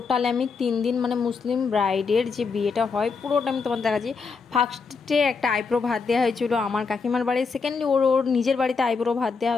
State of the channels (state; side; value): quieter; right; 5.0 dB